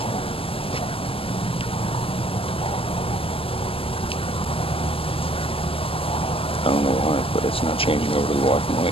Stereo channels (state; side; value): late; right; 0.26 ms